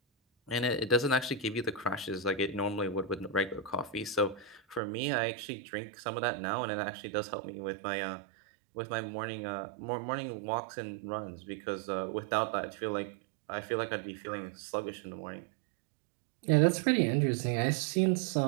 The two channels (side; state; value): left; drops out; at 4.8 s